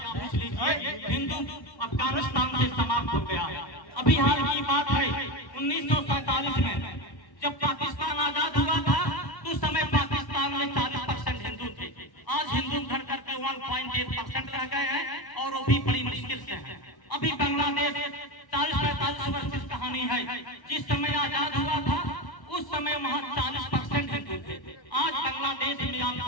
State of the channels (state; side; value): late; right; 1.1 ms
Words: पूछ लीजिए, हिंदू अफगानिस्तान से समाप्त हो गया है। अभी हाल की बात है 1947 में जब पाकिस्तान आजाद हुआ था तो उस समय पाकिस्तान में 40% हिंदू थे। आज हिंदू घट करके 1.8% रह गए हैं और वो भी बड़ी मुश्किल से है। अभी बांग्लादेश 40-45 वर्ष की कहानी है। जिस समय आजाद हुआ था उस समय वहाँ 40% हिंदू थे। आज बांग्लादेश में आप